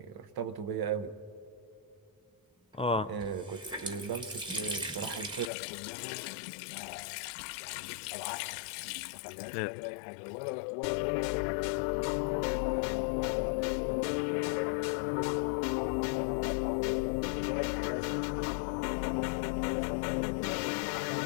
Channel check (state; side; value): drops out; right; at 5.5 s